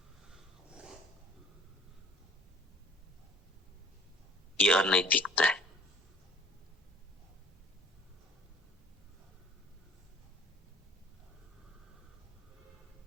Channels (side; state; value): both; normal; correlation 0.52